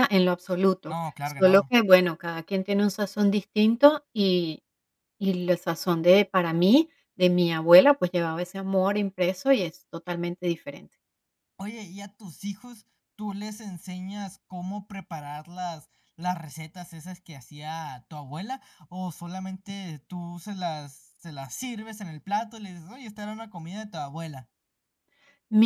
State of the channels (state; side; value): identical; both; correlation 1.00